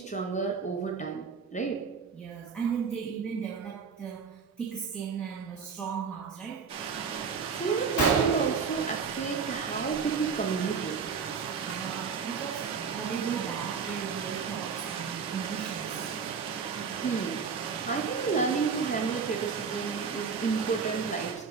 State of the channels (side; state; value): left; quieter; 5.7 dB